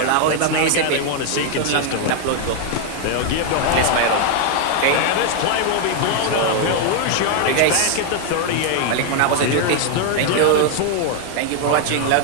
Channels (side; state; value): both; different; correlation 0.00